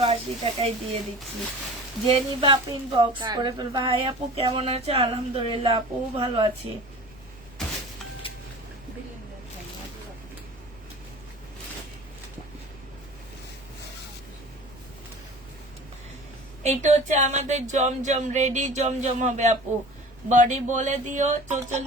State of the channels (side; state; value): left; noise; rumble, 23 dB below the sound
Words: টাকায় দিয়ে দিচ্ছি। যে নিবা পিন বক্স করে ফেলবা। হাই আপু কেমন আছে? আলহামদুলিল্লাহ আপু ভালো আছি। এইটা হচ্ছে আমাদের জমজম, রেডি জমজম হবে আপু। বডি বলে দিও